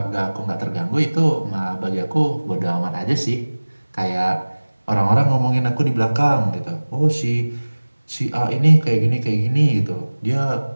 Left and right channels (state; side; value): inverted; both; correlation -1.00